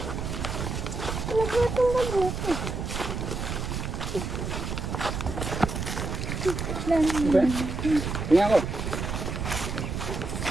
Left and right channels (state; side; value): noise; right; rumble, 4 dB below the sound